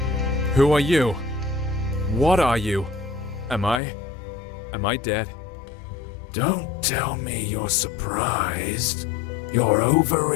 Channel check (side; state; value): right; drops out; at 3.8 s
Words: Who are you? What are you? Am I dead? Don't tell me you're surprised. You're